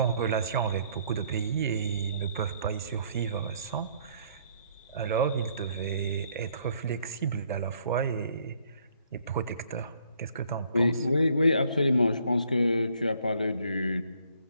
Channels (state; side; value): inverted; both; correlation -0.65